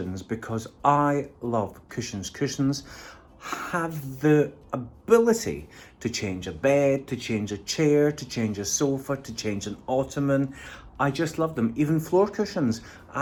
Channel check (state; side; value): identical; both; correlation 1.00